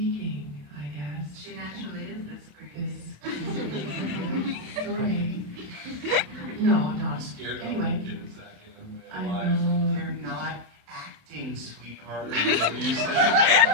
I guess. She naturally is this great. Sorry. No, I'm not. Scared that Anyway. one kid a second. I know. You're not acting, sweetheart. You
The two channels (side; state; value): left; late; 27 ms